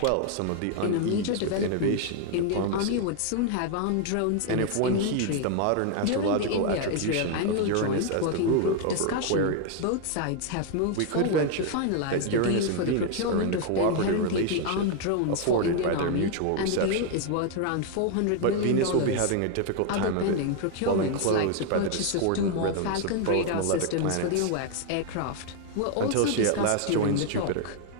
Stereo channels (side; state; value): both; different; correlation 0.00